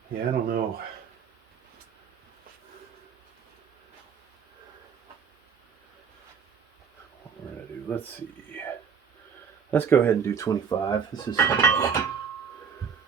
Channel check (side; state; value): left; quieter; 6.6 dB